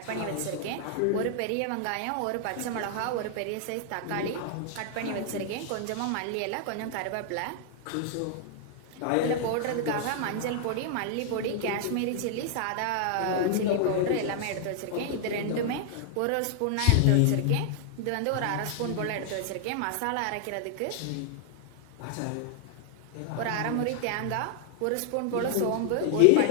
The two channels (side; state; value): both; different; correlation 0.00